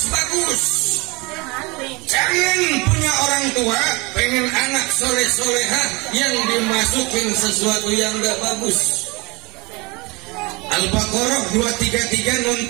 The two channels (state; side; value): quieter; left; 25.8 dB